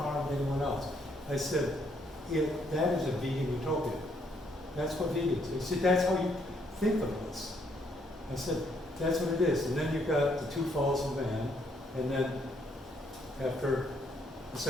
anyone else. I said, that is a vegan utopia. That's what vegans are. He said, that's how you think of us. I said, that's what it is. And then you've got the two falls of man, and then after the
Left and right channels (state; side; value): normal; both; correlation 0.71